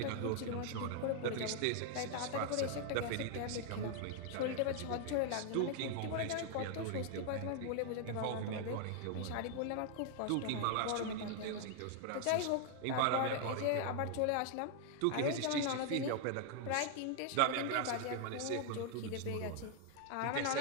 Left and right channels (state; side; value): different; both; correlation 0.00